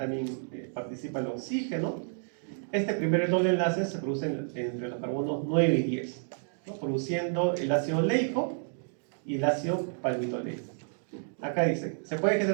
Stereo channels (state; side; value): silent; left; digital silence